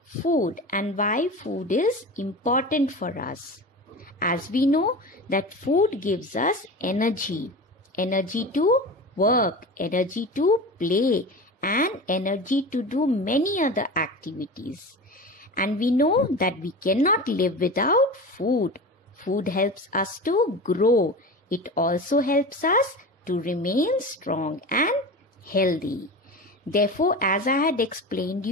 food and why food is important for us. As we know that food gives us energy to work, energy to play, and energy to do many other activities. And we know that we cannot live without food. Food helps us to grow. It also helps us to remain strong and healthy. Therefore, as I had explained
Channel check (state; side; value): normal; both; correlation 0.30